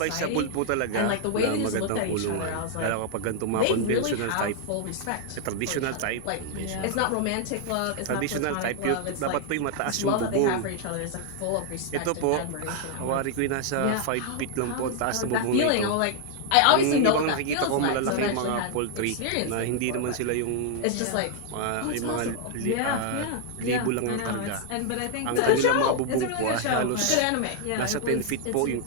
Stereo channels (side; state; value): both; different; correlation 0.00